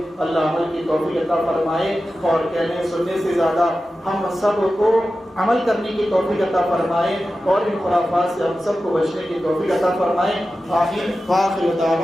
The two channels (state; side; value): normal; both; correlation 0.93